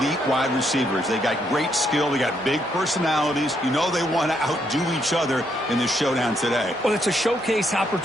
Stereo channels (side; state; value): both; normal; correlation 0.75